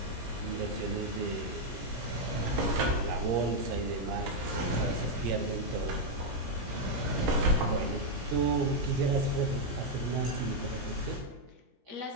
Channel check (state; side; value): late; left; 17 ms